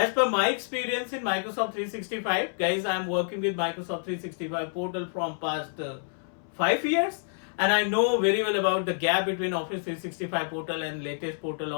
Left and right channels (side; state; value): right; silent; 59 dB below the other